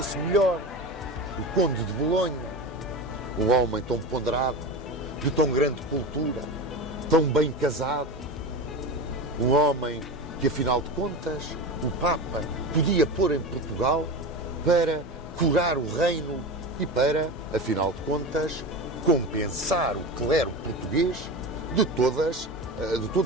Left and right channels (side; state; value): both; normal; correlation 0.26